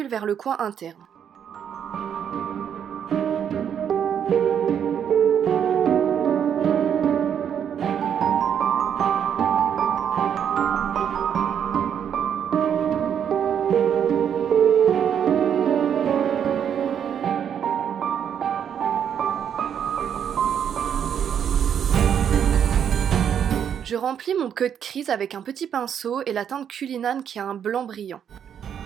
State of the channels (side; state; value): left; quieter; 8.6 dB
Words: vers le coin interne. Je remplis mon cut crease avec un petit pinceau et la teinte Cullinan qui a un blanc brillant.